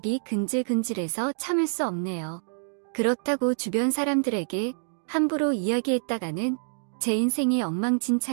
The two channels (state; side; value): silent; left; digital silence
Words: 근질근질해서 참을 수 없네요. 그렇다고 주변 사람들에게 함부로 이야기했다가는 제 인생이